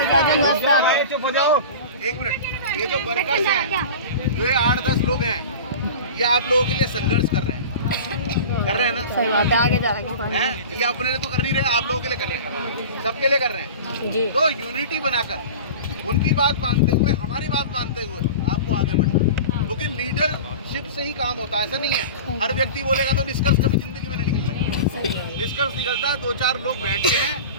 चुप हो जाओ। एक मिनट, ये जो वर्कर्स हैं, जो ये 8-10 लोग हैं, ये आप लोगों के लिए संघर्ष कर रहे हैं ना? सही बात है, आगे जा रहे हैं? ये अपने लिए तो कर नहीं रहे, आप लोगों के लिए कर रहे हैं, सबके लिए कर रहे हैं। हैं जी। तो यूनिटी बनाकर, उनकी बात मानते हुए, हमारी बात मानते हुए आपको आगे बढ़ना है। क्योंकि लीडरशिप से ही काम होता है, ऐसा नहीं है हर व्यक्ति बोलेगा तो निष्कर्ष कभी जिंदगी में नहीं निकलना है। निष्कर्ष निकलता है, 2-4 लोग बैठते हैं,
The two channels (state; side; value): inverted; both; correlation -0.34